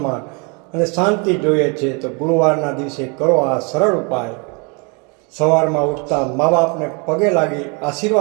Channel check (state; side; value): quieter; left; 32.9 dB